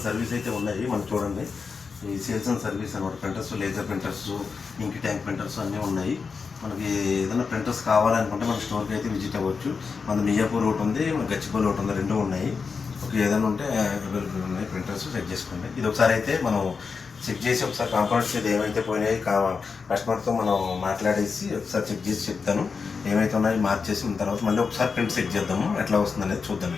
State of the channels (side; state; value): right; quieter; 5.2 dB